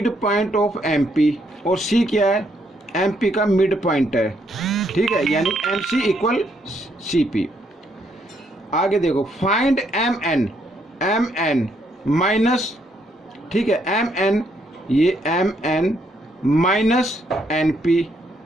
midpoint of M P, और सी क्या है, एम पी का मिड पॉइंट है। ठीक ठीक है, यानी M C equal C P. आगे देखो, फाइंड एम एन माइनस, ठीक है, एम एन, ये M N minus N P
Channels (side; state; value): both; normal; correlation 0.73